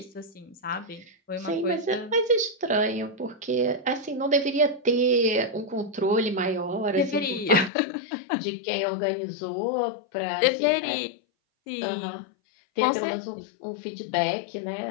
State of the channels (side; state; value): right; drops out; at 7.7 s